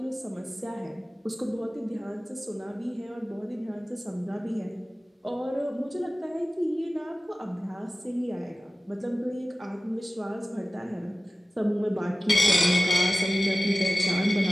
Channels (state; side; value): normal; both; correlation 0.97